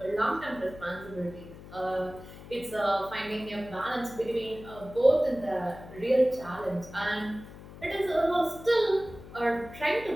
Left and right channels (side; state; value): left; noise; hum, 16 dB below the sound